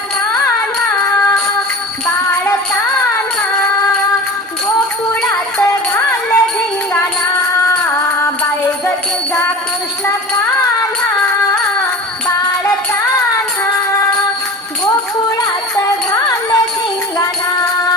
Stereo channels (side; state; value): both; normal; correlation 0.36